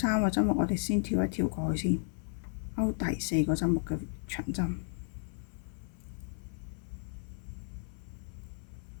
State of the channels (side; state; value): right; silent; 55 dB below the other